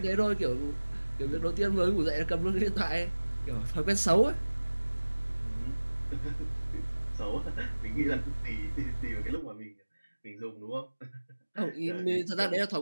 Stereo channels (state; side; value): inverted; both; correlation -1.00